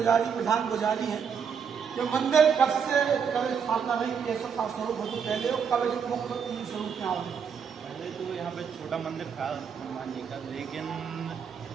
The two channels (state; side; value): quieter; left; 6.8 dB